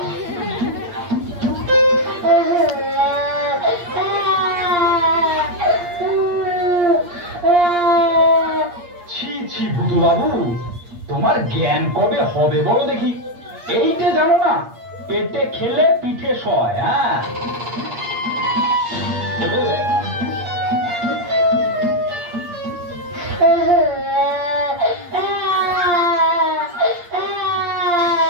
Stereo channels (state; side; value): late; left; 8.6 ms